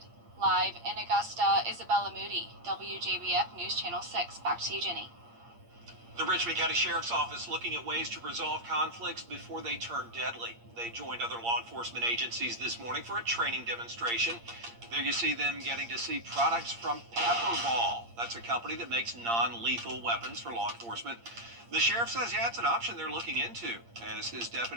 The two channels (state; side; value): late; left; 8.6 ms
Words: Live in Augusta, Isabella Moody, WJBF News Channel 6. Back to you, Jenny. The Richmond County Sheriff's Office looking at ways to resolve conflicts before they turn deadly. They joined other law enforcement agencies this morning for a training demonstration. There you see them getting to see products from Pepperball. That's a company that makes non-lethal weapons for law enforcement. The sheriff says, yeah, it's an option they're looking into as his